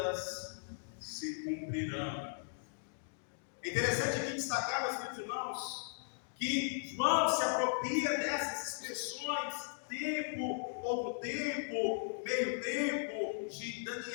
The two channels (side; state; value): right; silent; digital silence